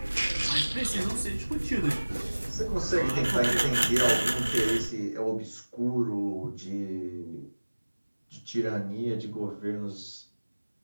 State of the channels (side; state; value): both; inverted; correlation -1.00